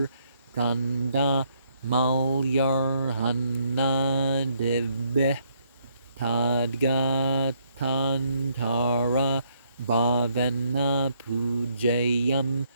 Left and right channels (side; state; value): both; inverted; correlation -0.71